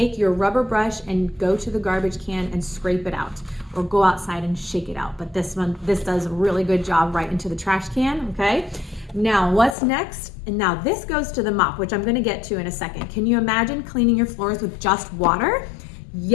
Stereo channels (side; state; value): right; drops out; at 9.8 s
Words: your rubber brush and go to the garbage can and scrape it out, or go outside and shake it out. But this does a really good job right into the trash can, okay? Now, what's next? And now this goes to the mop, which I'm gonna get to in a second. Can you imagine cleaning your floors with just water?